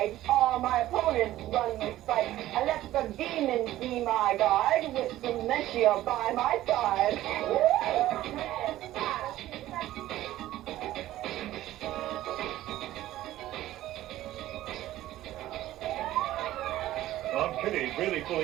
All my opponents run with fight. I let the demons be my guide, with dementia by my side. Aunt Kitty's really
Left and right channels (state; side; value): quieter; left; 14.7 dB